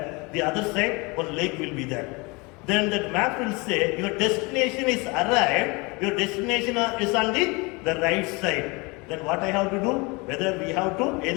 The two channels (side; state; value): right; quieter; 27.1 dB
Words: the other side one lake will be there. Then that map will say your destination is arrived, your destination is on the right side. Then what I have to do? Whether we have to